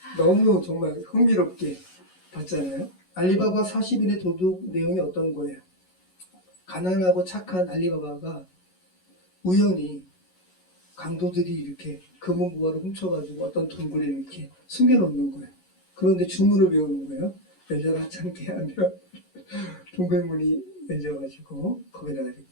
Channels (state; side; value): late; right; 11 ms